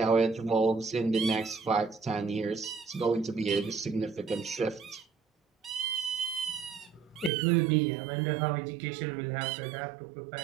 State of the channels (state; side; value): drops out; left; at 7.3 s